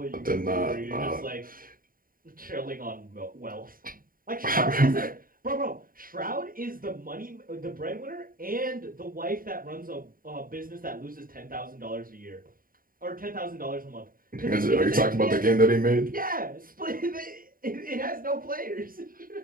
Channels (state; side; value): late; left; 0.41 ms